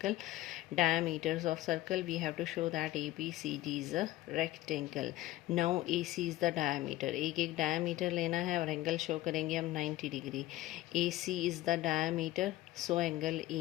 Diameters of circle, we have to show that ABCD is a rectangle. Now AC is the diameter. एक diameter लेना है और एंगल शो करेंगे हम 90 degree. AC is the diameter, so angle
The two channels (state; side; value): quieter; right; 16.3 dB